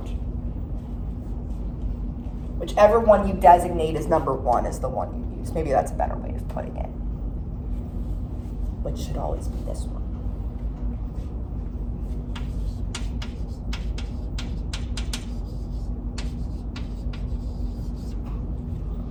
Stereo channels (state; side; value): identical; both; correlation 1.00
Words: Whichever one you designate as number 1 is the one you use. Maybe that's a better way of putting it, which should always be this one.